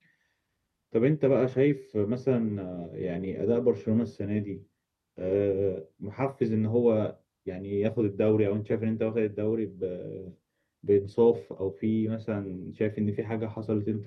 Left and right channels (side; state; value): both; identical; correlation 1.00